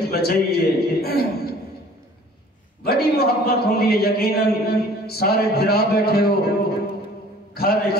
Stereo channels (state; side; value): normal; both; correlation 0.50